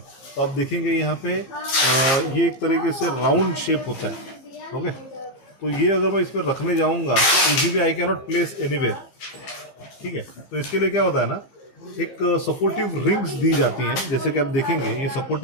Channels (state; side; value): late; right; 15 ms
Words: तो आप देखेंगे यहाँ पे ये एक तरीके से राउंड शेप होता है। ओके, तो ये अगर मैं इस पर रखने जाऊँगा तो easily I can not place anywhere. ठीक है, तो इसके लिए क्या होता है ना, एक सपोर्टिव रिंग्स दी जाती हैं। जैसे कि आप देखेंगे ये